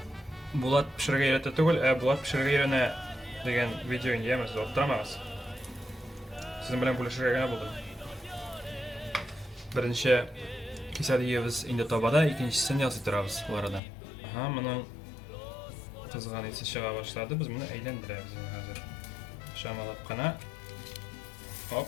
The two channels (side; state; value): right; drops out; at 13.8 s